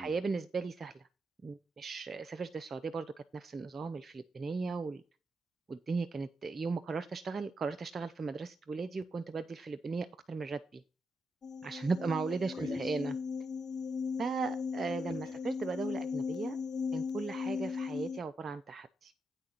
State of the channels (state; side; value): normal; both; correlation 0.83